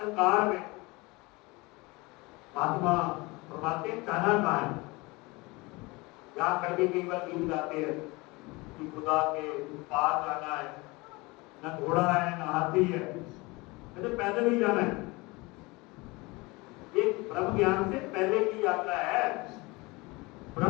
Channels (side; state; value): right; quieter; 24.3 dB